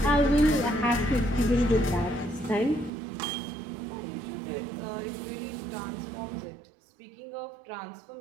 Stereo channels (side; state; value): left; drops out; at 2.9 s